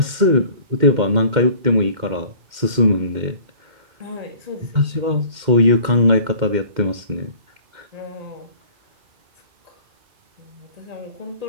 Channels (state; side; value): late; left; 2.1 ms